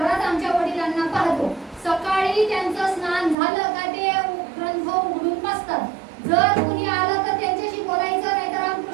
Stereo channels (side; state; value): left; drops out; at 3.4 s